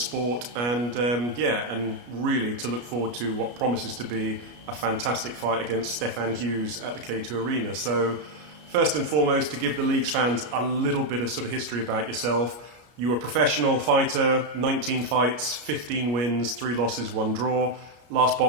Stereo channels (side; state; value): left; late; 33 ms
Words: and and really to look forward to what promises to be a fantastic fight against Stefan Hughes at the K2 Arena. So first and foremost, to give the league's fans a little bit of sort of history about yourself. You were a professional fighter, 19 fights, 15 wins, 3 losses, 1 draw. Last